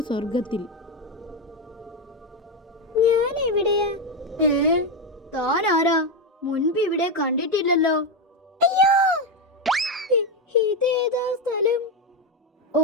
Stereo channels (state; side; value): normal; both; correlation 0.09